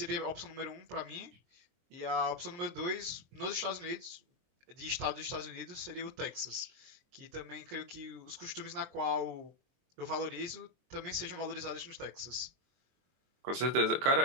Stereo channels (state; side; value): late; left; 23 ms